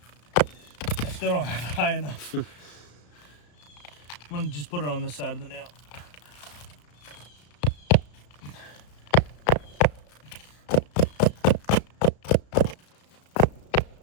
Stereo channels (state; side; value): late; right; 34 ms